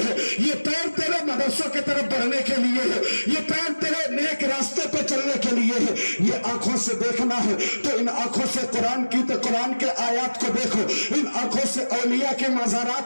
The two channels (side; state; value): both; inverted; correlation -1.00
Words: ہے، یہ پیر تیرے مدرسوں کی طرف بڑھنے کے لیے ہے، یہ پیر تیرے نیک راستے پہ چلنے کے لیے ہے۔ یہ آنکھوں سے دیکھنا ہے تو ان آنکھوں سے قرآن کے آیات کو دیکھو، ان آنکھوں سے اولیاء کے